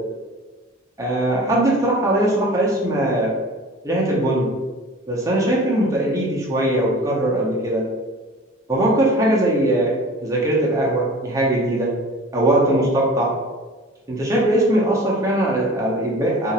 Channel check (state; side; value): normal; both; correlation 0.42